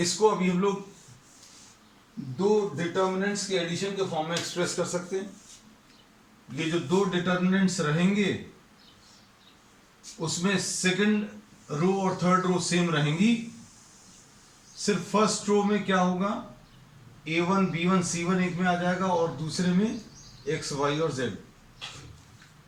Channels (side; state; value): both; identical; correlation 1.00